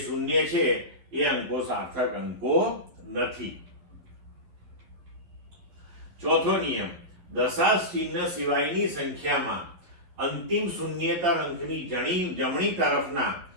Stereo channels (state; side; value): late; left; 11 ms